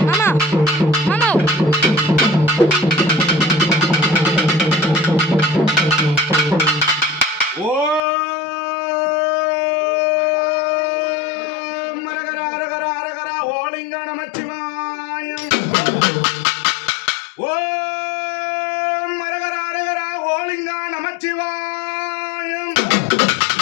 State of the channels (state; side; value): drops out; right; at 8.0 s